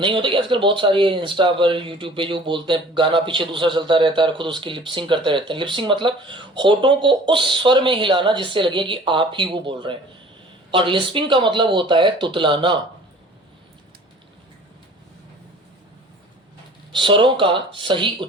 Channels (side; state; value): both; normal; correlation 0.47